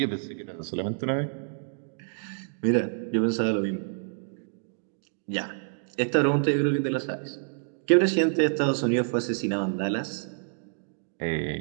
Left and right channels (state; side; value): silent; left; digital silence